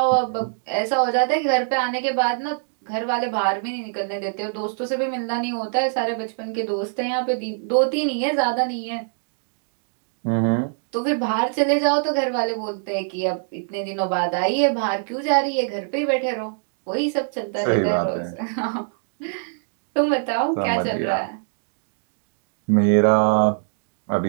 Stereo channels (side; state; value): left; silent; digital silence